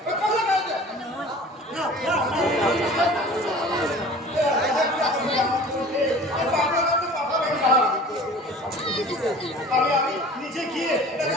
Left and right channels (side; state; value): both; normal; correlation 0.43